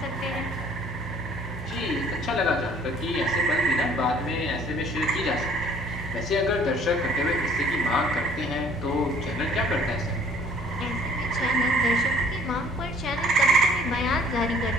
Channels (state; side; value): normal; both; correlation 0.56